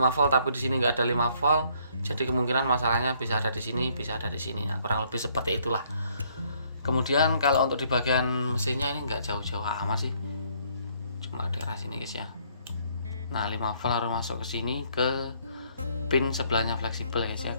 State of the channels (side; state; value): both; inverted; correlation -0.66